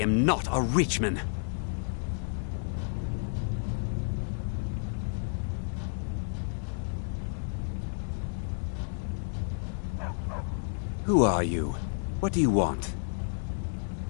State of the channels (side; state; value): right; silent; digital silence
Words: not a Richman. Who are you? What do you want?